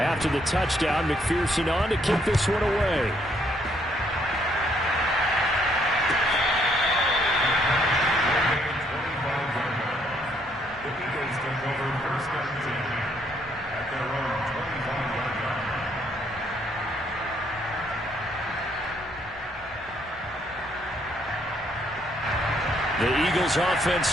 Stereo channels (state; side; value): normal; both; correlation 0.70